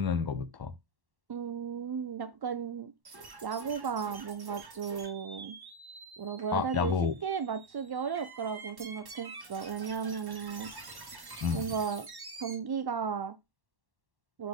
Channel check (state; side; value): late; left; 1.1 ms